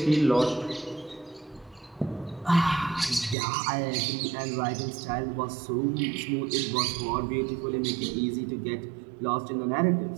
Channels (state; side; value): drops out; left; at 3.4 s